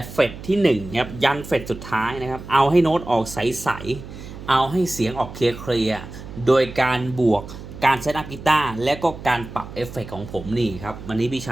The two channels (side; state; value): right; noise; hum, 13 dB below the sound